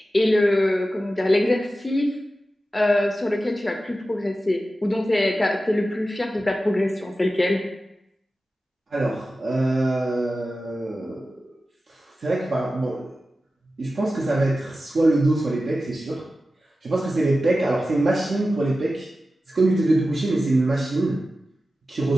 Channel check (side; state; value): both; normal; correlation 0.94